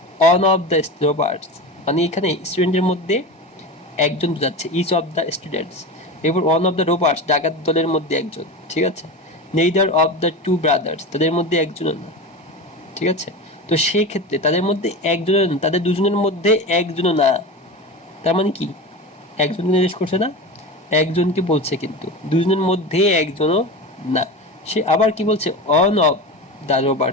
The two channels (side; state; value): both; normal; correlation 0.26